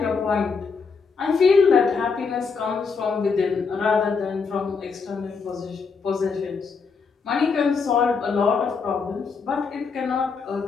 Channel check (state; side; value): quieter; right; 5.2 dB